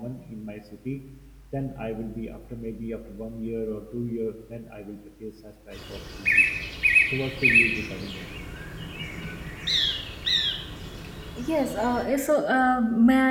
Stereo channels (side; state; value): both; identical; correlation 1.00